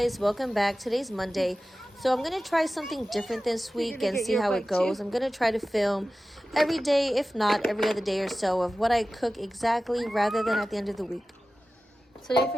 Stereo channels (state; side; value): normal; both; correlation 0.95